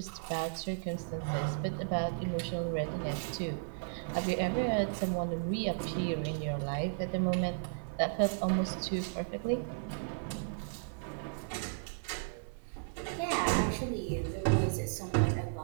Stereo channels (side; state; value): left; silent; 55 dB below the other